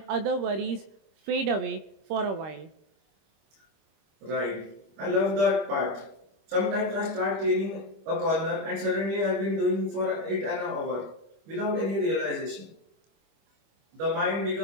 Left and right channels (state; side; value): late; left; 25 ms